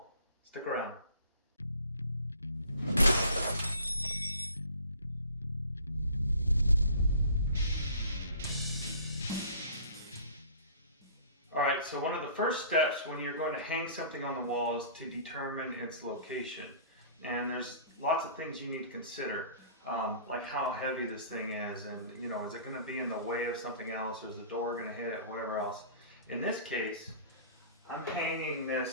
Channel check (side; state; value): both; inverted; correlation -0.47